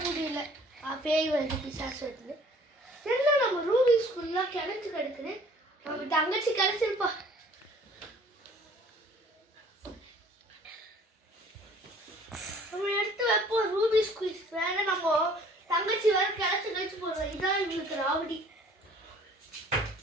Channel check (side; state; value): both; normal; correlation 0.54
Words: முடியல. பேய் வருது, பிசாசு வருது. என்ன நம்ம ரூபி ஸ்கூல்லாம் கிணச்சு கிடக்குது. நம்ம தங்கச்சி கிடச்சிருப்பா. நம்ம எடுத்து வைப்போம் ரூபி ஸ்குயிஸ். வேற நம்ம தங்கச்சி வேற கிடச்சு போடுவோம். இதான் எங்களுக்கு ராவடி.